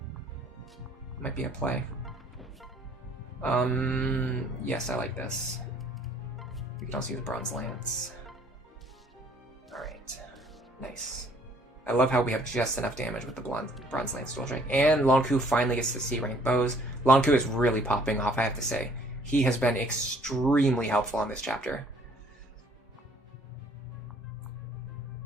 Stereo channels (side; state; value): both; normal; correlation 0.59